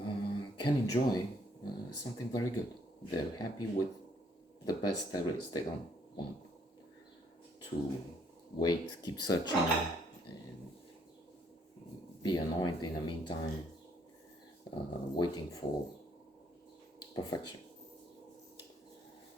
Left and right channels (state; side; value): normal; both; correlation 0.67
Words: can enjoy something very good. They're happy with the best there is. They don't want to wait, keep searching, and be annoyed in the meantime, waiting for perfection.